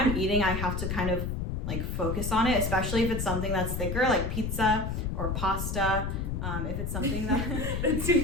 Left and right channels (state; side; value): noise; left; rumble, 2 dB below the sound